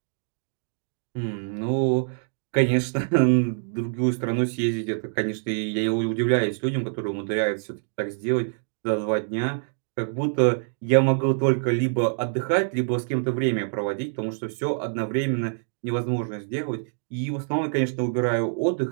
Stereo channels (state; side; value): silent; left; digital silence